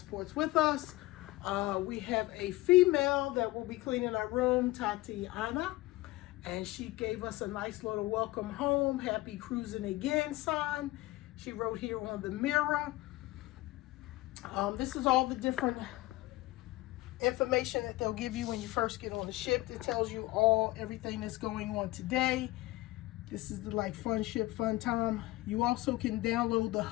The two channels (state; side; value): quieter; right; 18.9 dB